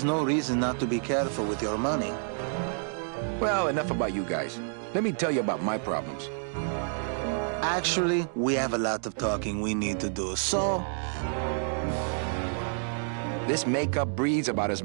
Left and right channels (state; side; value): silent; left; 59 dB below the other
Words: no reason not to be careful with your money. Well, enough about you guys. Let me tell you about my problems. Actually, we have a lot of talking we need to do, so... This makeup breathes about as